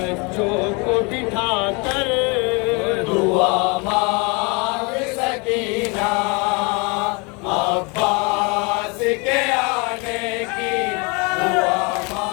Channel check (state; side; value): quieter; right; 30.3 dB